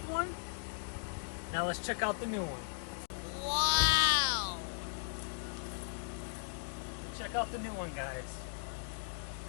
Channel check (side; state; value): right; silent; digital silence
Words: one. Now let's check out the new one. Wow! Check out the new one,